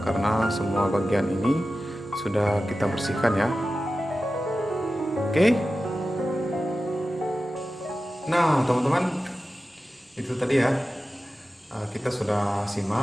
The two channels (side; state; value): both; normal; correlation 0.94